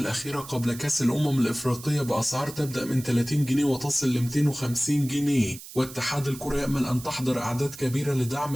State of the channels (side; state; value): right; noise; hiss, 15 dB below the sound